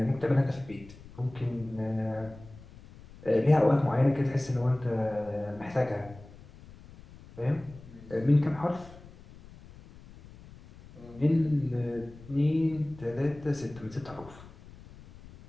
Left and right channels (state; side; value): noise; left; rumble, 20 dB below the sound